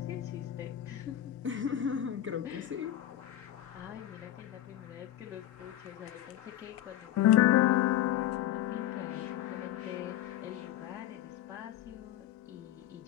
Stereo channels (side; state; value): right; quieter; 12.6 dB